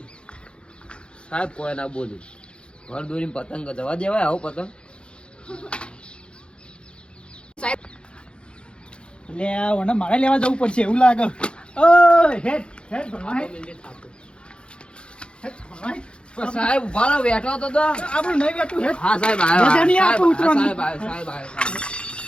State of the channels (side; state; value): right; late; 0.055 ms